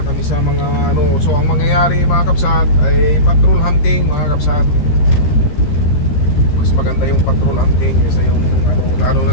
kami sa mga ano. So ang mangyayari mga kabsat ay patrol hunting mga kabsat. Mas maganda yung patrol hunting kasi yung ano, lalo na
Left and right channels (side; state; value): right; late; 13 ms